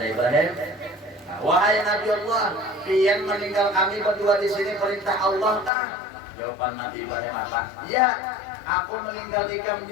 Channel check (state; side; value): drops out; right; at 5.7 s